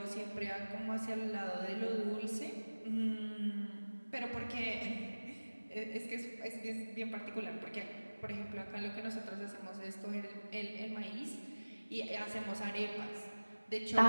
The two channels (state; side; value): inverted; both; correlation -1.00